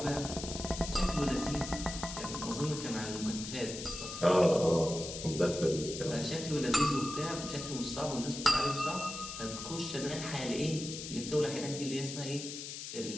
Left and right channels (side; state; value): left; noise; hiss, 8 dB below the sound